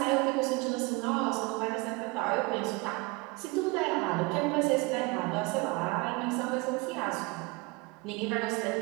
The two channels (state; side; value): quieter; left; 26.4 dB